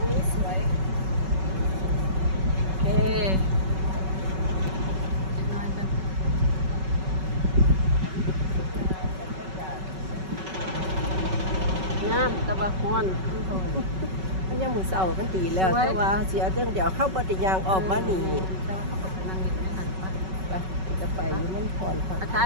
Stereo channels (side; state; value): left; late; 5.3 ms